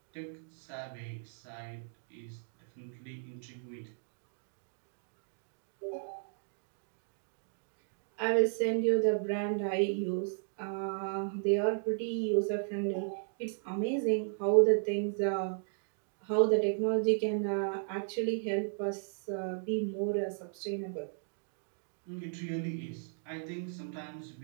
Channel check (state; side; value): silent; left; digital silence